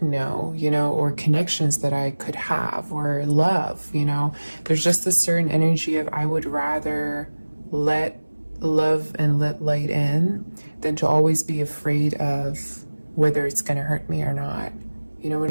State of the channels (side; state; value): both; inverted; correlation -1.00